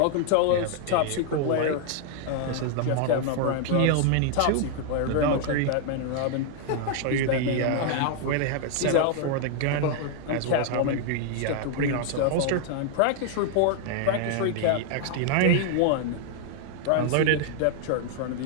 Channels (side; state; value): both; different; correlation 0.00